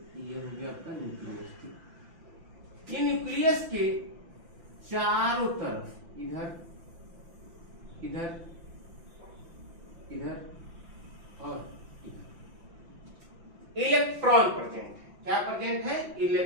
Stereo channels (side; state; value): left; late; 5.9 ms